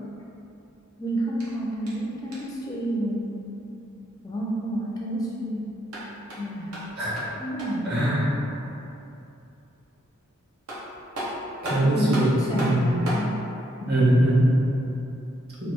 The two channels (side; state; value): both; normal; correlation 0.77